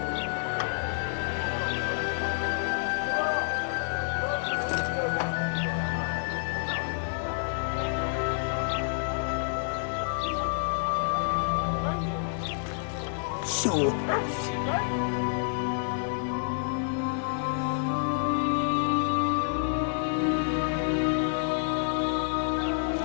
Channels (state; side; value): silent; right; digital silence